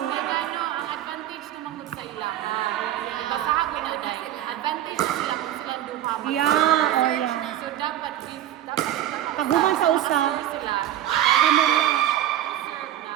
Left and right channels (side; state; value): left; quieter; 12.4 dB